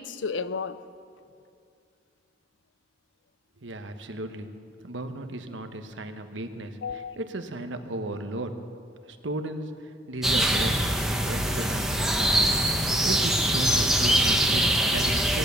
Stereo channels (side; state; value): both; normal; correlation 0.61